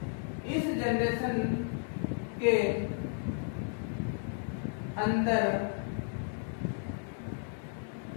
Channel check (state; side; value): silent; right; 55 dB below the other